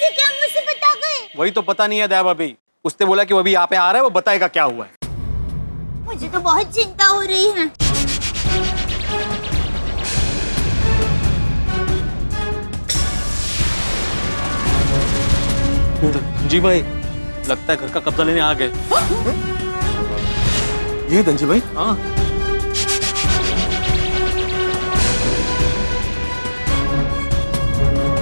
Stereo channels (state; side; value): inverted; both; correlation -1.00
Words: क्या मुसीबत आ गई? वही तो पता नहीं है दया भाभी। उसने बोला कि वो अभी यहाँ पे आ रहा है, वो बताएगा क्या हुआ है। मुझे तो बहुत चिंता हो रही है। जी भाई, लगता है घर का कब्जा लेने आ गए। ये धनजी भाई? हाँ।